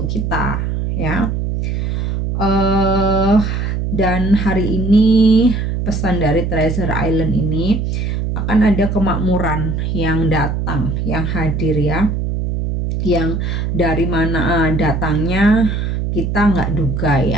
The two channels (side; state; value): right; noise; hum, 1 dB below the sound